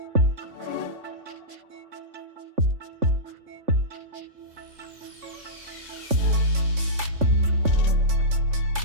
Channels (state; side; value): late; left; 3.5 ms